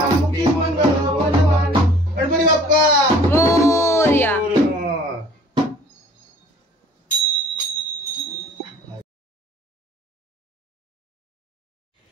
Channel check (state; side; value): normal; both; correlation 0.52